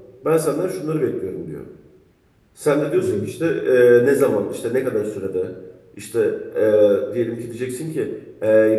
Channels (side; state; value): both; identical; correlation 1.00